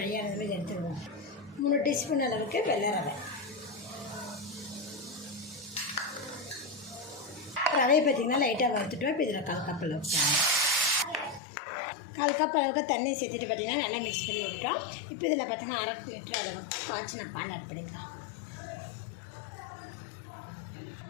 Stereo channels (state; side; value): drops out; right; at 11.4 s